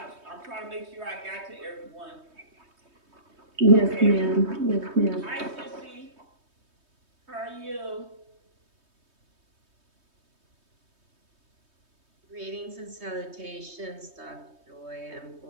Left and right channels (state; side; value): late; left; 3.2 ms